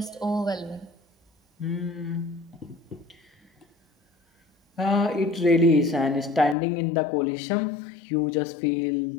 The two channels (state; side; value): drops out; right; at 6.6 s